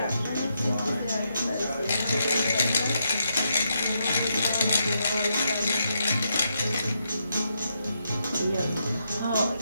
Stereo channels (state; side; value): inverted; both; correlation -0.80